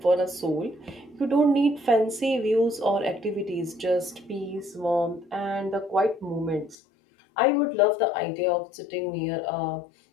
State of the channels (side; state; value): right; drops out; at 6.8 s